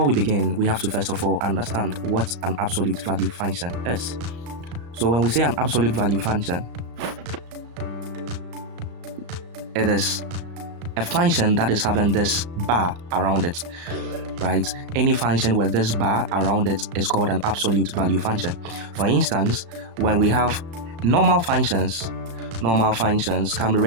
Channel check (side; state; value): left; late; 35 ms